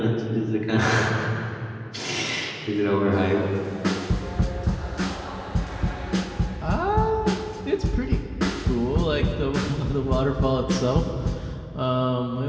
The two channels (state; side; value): identical; both; correlation 1.00